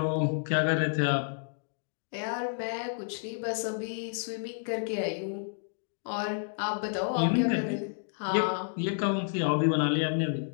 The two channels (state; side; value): silent; right; digital silence